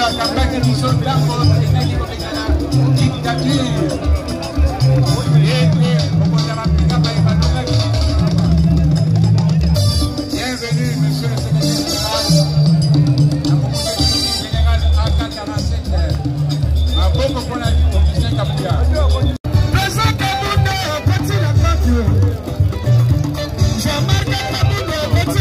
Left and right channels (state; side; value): identical; both; correlation 1.00